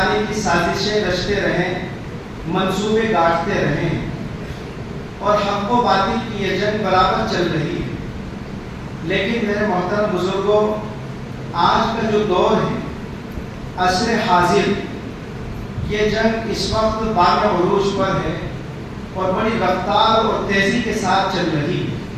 کی سازشیں رچتے رہیں، منصوبے گاٹتے رہیں، اور حق و باطل کی یہ جنگ برابر چل رہی ہے۔ لیکن میرے محترم بزرگوں، آج کا جو دور ہے، عصر حاضر، یہ جنگ اس وقت بام عروج پر ہے اور بڑی رفتار اور تیزی کے ساتھ چل رہی ہے۔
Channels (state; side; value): identical; both; correlation 1.00